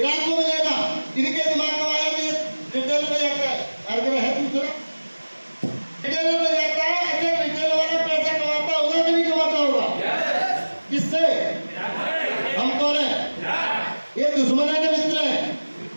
को मिलेगा। इनके दिमाग में आया कि रिटेल में जाता है, हर जगह है दूसरा रिटेल में जाता है। अच्छा रिटेल वाला पैसा कमाता होगा कि नहीं कमाता होगा? किससे? हम कौन है? ये दुश्मन है कि मित्र है?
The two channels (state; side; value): inverted; both; correlation -1.00